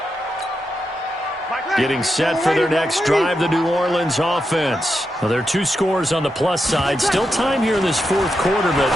Getting set for their next drive, the New Orleans offense. Well, there are 2 scores on the plus side. Still time here in this fourth quarter, but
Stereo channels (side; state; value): both; normal; correlation 0.86